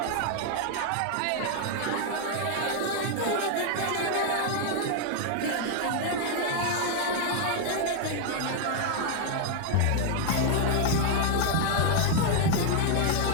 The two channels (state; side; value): different; both; correlation 0.00